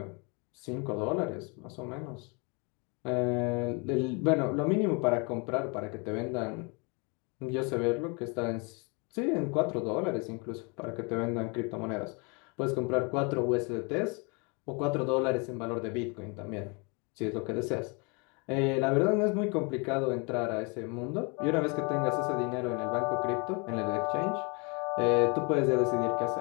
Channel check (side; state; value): right; quieter; 32.2 dB